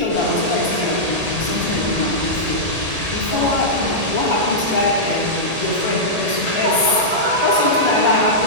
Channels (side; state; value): left; late; 1.8 ms